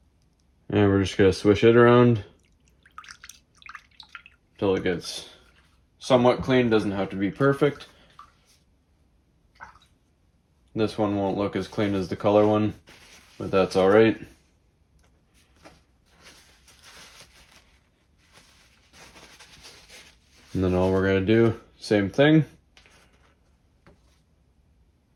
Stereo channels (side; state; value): both; identical; correlation 1.00